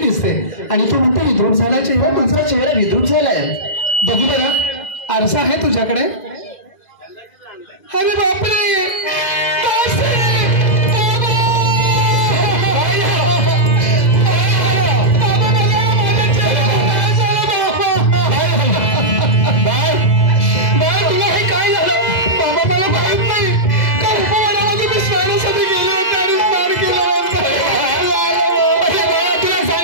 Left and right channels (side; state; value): right; late; 2.0 ms